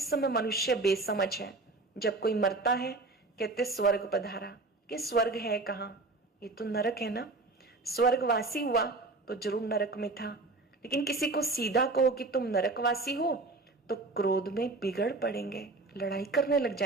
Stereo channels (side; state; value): left; quieter; 3.3 dB